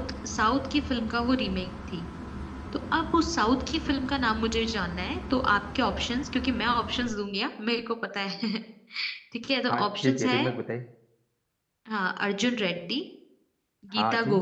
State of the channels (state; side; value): identical; both; correlation 1.00